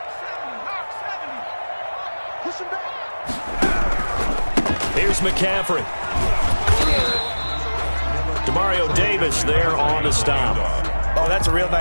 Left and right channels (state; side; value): inverted; both; correlation -1.00